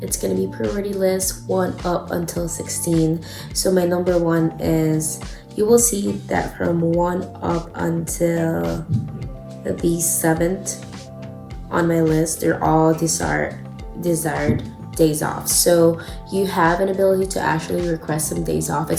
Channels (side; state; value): both; identical; correlation 1.00